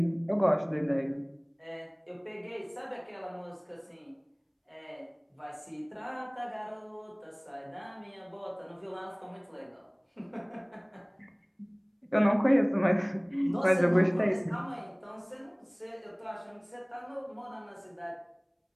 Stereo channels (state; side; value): identical; both; correlation 1.00